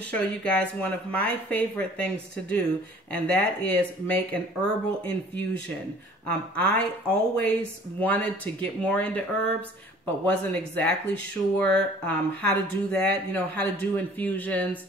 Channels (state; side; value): normal; both; correlation 0.51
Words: you guys one of my favorite things to do, and that is make an herbal infusion. I always wanted to get more into herbs, but wasn't exactly sure how to do that, how to do infusions.